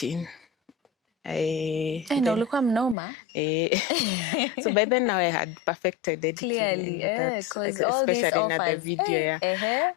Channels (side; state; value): right; drops out; at 3.0 s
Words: Ulikuwa mnoma. So by then now I had perfected editing. Clearly, because all these offers. The video,